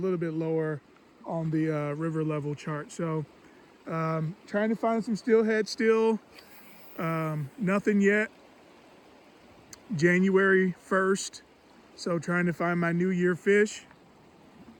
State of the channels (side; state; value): both; identical; correlation 1.00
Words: bit lower on the river level chart. So trying to find some steelhead still. Nothing yet. January 1st. So trying to find my New Year fish.